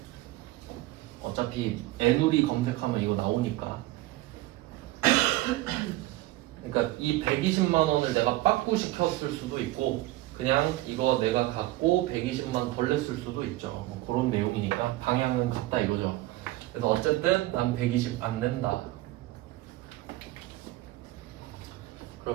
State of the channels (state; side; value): quieter; left; 17.7 dB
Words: 어차피 애누리 검색하면 이거 나오니까. 그러니까 이 120만 원을 내가 빠꾸 시켰을 수도 있고 그냥 이거 내가 갖고 120만 덜 냈을 수도 있죠. 뭐 그런 내용이니까 방향은 같다 이거죠. 그래서 어쨌든 난 120 안 낸다.